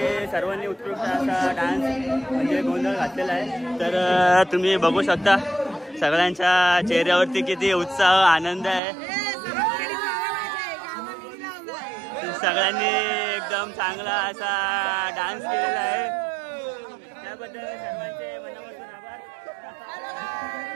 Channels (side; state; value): left; drops out; at 8.8 s